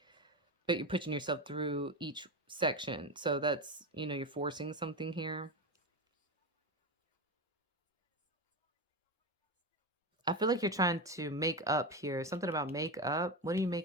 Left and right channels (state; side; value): normal; both; correlation 0.18